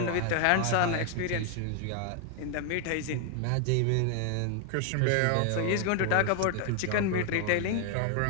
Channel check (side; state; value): both; different; correlation 0.00